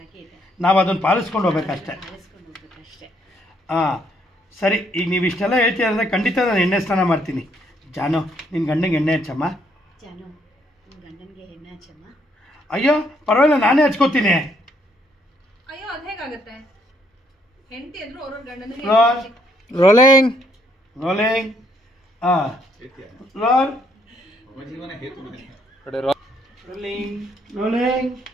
ನಾವು ಅದನ್ನು ಪಾಲಿಸ್ಕೊಂಡು ಹೋಗ್ಬೇಕಷ್ಟೆ. ಹಾಂ, ಸರಿ. ಈಗ ನೀವು ಇಷ್ಟೆಲ್ಲ ಹೇಳ್ತೀರ ಅಂದರೆ ಖಂಡಿತ ನಾನು ಎಣ್ಣೆ ಸ್ನಾನ ಮಾಡ್ತೀನಿ. ಜಾನು, ನಿನ್ನ ಗಂಡನಿಗೆ ಎಣ್ಣೆ ಹಚ್ಚಮ್ಮ. ಅಯ್ಯೋ ಪರವಾಗಿಲ್ಲ, ನಾನೇ ಹಚ್ಕೋತೀನಿ. Rolling rolling. ಹಾಂ, ರೋಲ್ ರೋಲಿಂಗ್ ರೋಲಿಂಗ್.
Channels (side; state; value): both; normal; correlation 0.69